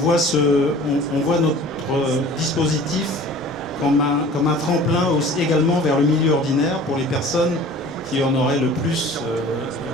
notre dispositif comme un tremplin également vers le milieu ordinaire pour les personnes qui en auraient le plus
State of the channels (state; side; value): normal; both; correlation 0.45